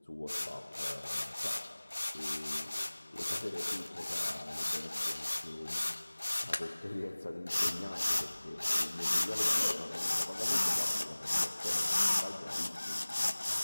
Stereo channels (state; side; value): inverted; both; correlation -1.00